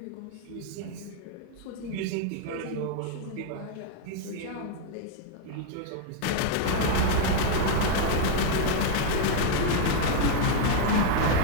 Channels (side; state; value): both; different; correlation 0.01